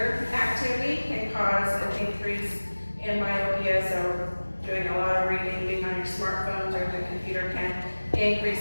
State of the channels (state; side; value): inverted; both; correlation -1.00